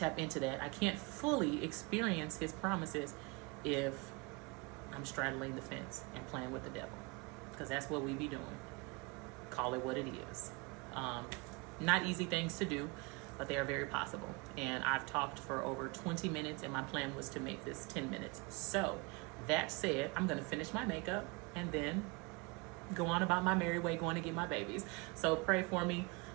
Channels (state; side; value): quieter; left; 28.0 dB